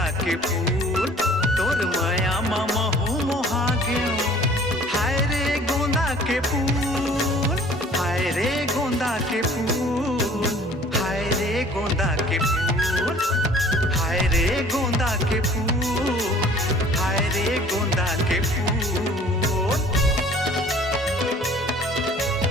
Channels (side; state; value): both; normal; correlation 0.51